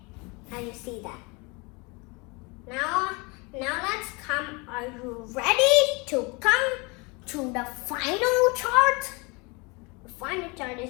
Now you see that. Now let's come. Are you ready to come to the final chart? The final chart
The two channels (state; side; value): quieter; right; 28.2 dB